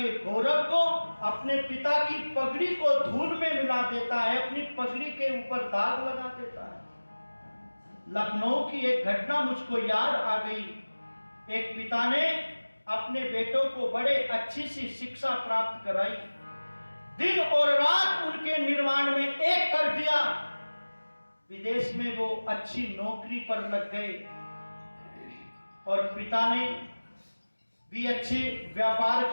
गौरव को, अपने पिता की पगड़ी को धूल में मिला देता है, अपनी पगड़ी के ऊपर दाग लगा देता है। लखनऊ की एक घटना मुझको याद आ गई। एक पिता ने अपने बेटों को बड़े अच्छी सी शिक्षा प्राप्त कराई, दिन और रात उनके निर्माण में एक कर दिया। विदेश में वो अच्छी नौकरी पर लग गए और पिता ने भी अच्छे व्यापार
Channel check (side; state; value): both; inverted; correlation -1.00